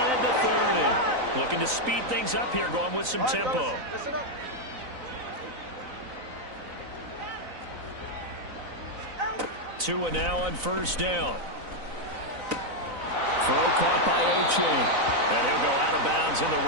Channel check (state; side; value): late; left; 3.9 ms